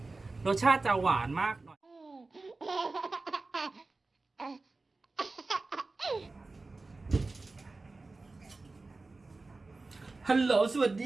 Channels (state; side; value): quieter; left; 3.5 dB